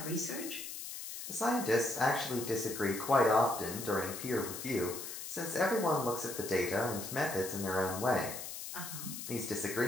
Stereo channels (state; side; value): noise; left; hiss, 8 dB below the sound